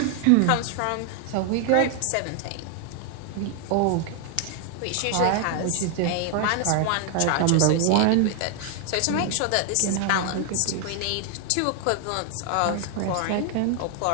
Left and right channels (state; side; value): different; both; correlation 0.00